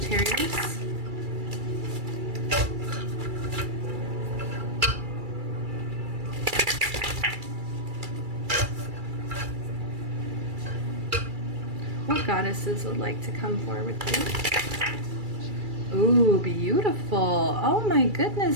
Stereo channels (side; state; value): left; late; 2.3 ms